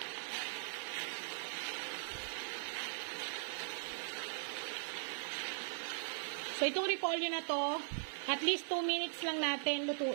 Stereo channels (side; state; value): left; silent; digital silence